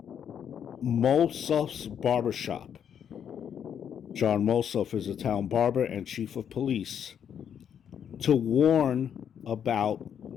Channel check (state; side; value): quieter; right; 8.5 dB